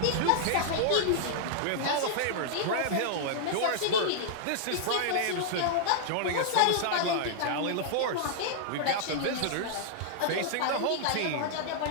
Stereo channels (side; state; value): both; different; correlation -0.01